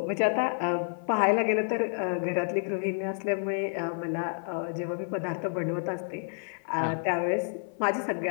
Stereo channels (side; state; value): right; silent; 57 dB below the other